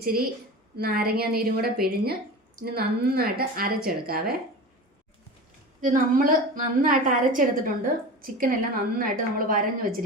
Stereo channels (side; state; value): both; normal; correlation 0.31